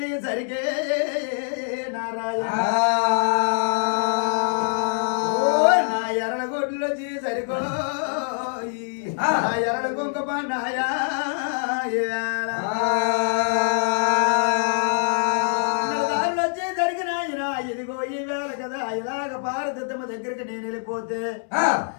సరిగే నారాయణ నా ఎరడ గొడ్లు వచ్చి సరికో నా ఎరడ కుంకుమ నాయా వచ్చి జరిగిన ఇదిగో ఈ వేళ కదా ఇలాగ భారతమ్మ దగ్గరికి నేను వెళ్ళిపోతే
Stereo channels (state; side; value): silent; right; 63 dB below the other